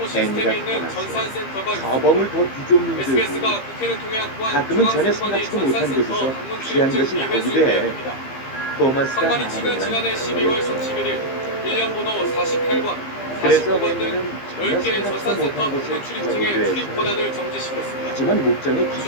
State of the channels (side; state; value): right; late; 15 ms